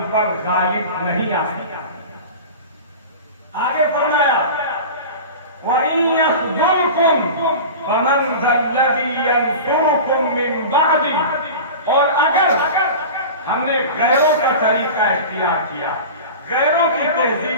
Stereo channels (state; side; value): inverted; both; correlation -0.32